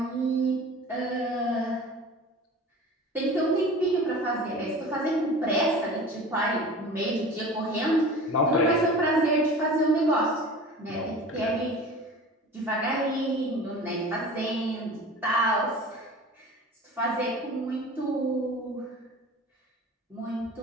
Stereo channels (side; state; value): both; normal; correlation 0.38